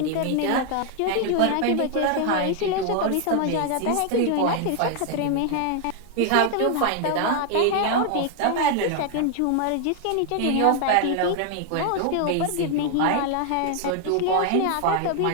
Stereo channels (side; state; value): both; different; correlation 0.00